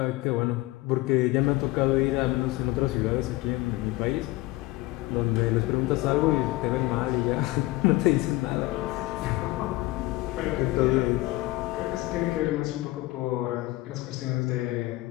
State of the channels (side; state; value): right; quieter; 19.1 dB